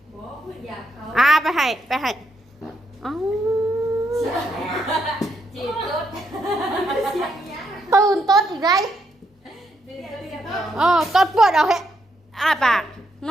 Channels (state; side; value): normal; both; correlation 0.78